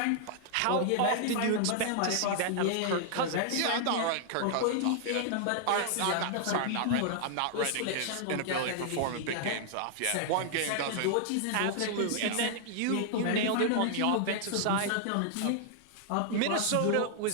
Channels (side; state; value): both; different; correlation -0.01